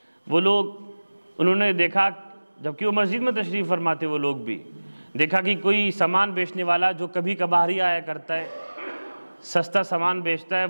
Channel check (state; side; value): inverted; both; correlation -1.00